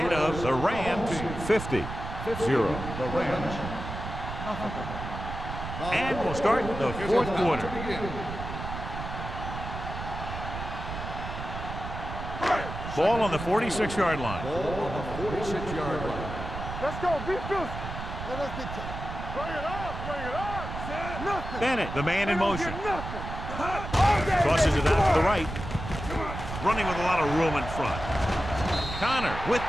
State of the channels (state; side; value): noise; right; rumble, 7 dB below the sound